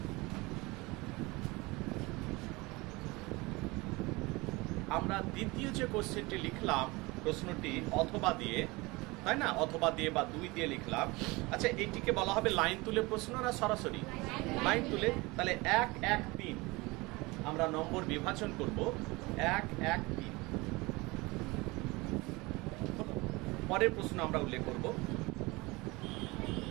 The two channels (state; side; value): quieter; left; 23.6 dB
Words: আমরা দ্বিতীয় যে কোশ্চেনটি লিখলাম, প্রশ্নটি অথবা দিয়ে, তাই না? অথবা দিয়ে বা 2 দিয়ে লিখলাম। আচ্ছা, এইটিকে বলা হবে লাইন তুলে প্রশ্ন না সরাসরি? লাইন তুলে। তাহলে 1, 1, 3 আমরা নম্বর বিভাজন করব। 1, 1, 3। পরের প্রশ্ন আমরা উল্লেখ করব।